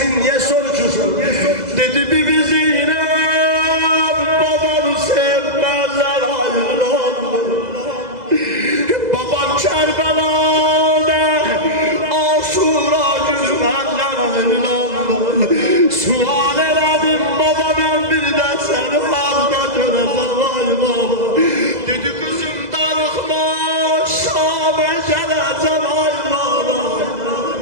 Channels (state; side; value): late; left; 2.0 ms